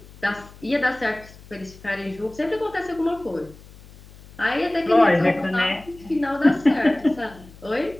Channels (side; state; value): left; noise; hum, 21 dB below the sound